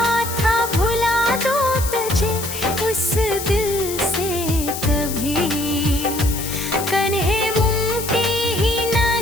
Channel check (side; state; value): left; noise; hiss, 7 dB below the sound